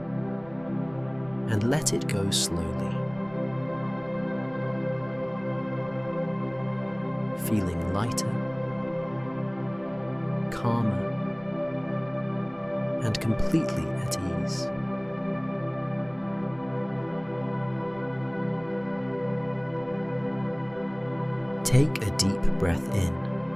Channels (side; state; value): right; noise; rumble, 23 dB below the sound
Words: and let it go slowly. Feeling lighter, calmer, and completely at ease. Take a deep breath in,